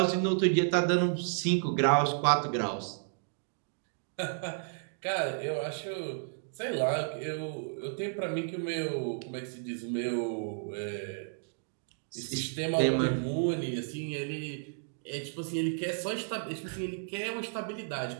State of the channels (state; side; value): silent; left; digital silence